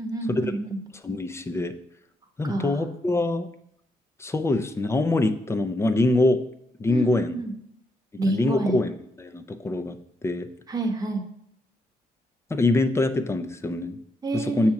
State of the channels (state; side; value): normal; both; correlation 0.80